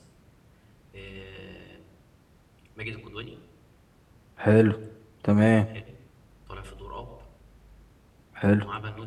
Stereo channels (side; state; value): both; identical; correlation 1.00